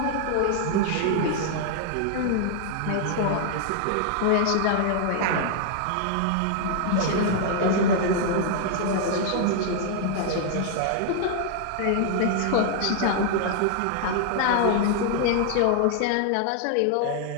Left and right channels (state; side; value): different; both; correlation 0.00